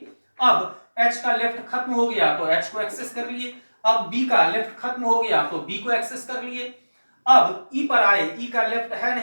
अब एच का लेफ्ट खत्म हो गया तो एच को एक्सेस कर लिए। अब बी का लेफ्ट खत्म हो गया तो बी को एक्सेस कर लिए। अब ई पर आए, ई का लेफ्ट है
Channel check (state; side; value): inverted; both; correlation -1.00